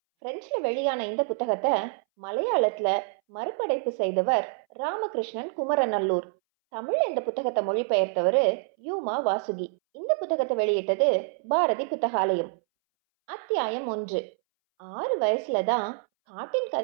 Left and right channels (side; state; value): left; silent; 60 dB below the other